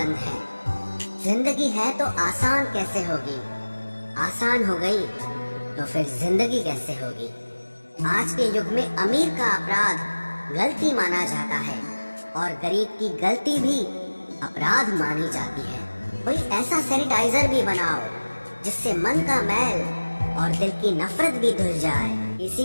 है। जिंदगी है तो आसान कैसे होगी, आसान हो गई तो फिर जिंदगी कैसे होगी। आज के युग में अमीर का अपराध गलती माना जाता है और गरीब की गलती भी अपराध मानी जाती है। कोई ऐसा सैनिटाइजर भी बनाओ जिससे मन का मैल और दिल की नफरत भी धुल जाए।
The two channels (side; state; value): both; inverted; correlation -1.00